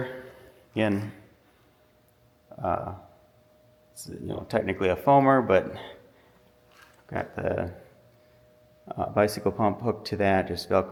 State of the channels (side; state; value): both; identical; correlation 1.00